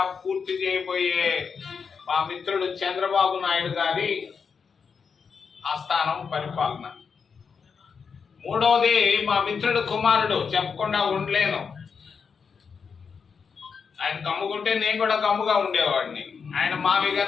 పూర్తి చేయబోయే మా మిత్రుడు చంద్రబాబు నాయుడు గారి ఆస్థానం పరిపాలన. మూడవది, మా మిత్రుడు కుమారుడు, చెప్పకుండా ఉండలేను. ఆయన గమ్ముకుంటే నేను కూడా గమ్ముగా ఉండేవాడిని. ఆయన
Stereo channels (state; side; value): quieter; right; 5.9 dB